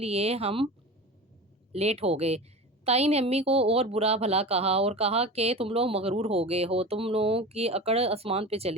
ہم لیٹ ہو گئے۔ تائی نے امی کو اور برا بھلا کہا اور کہا کہ تم لوگ مغرور ہو گئے ہو، تم لوگوں کی اکڑ آسمان پہ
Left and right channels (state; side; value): normal; both; correlation 0.32